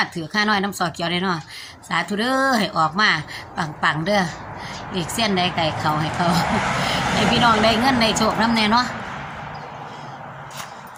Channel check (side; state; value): both; identical; correlation 1.00